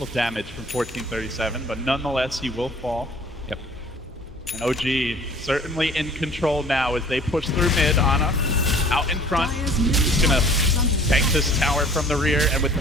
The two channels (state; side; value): normal; both; correlation 0.50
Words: damage from 1437, but nonetheless he will fall. Yep. And OG certainly in control now as they push through mid. Ana out in front. He's gonna tank this tower from the rear, and with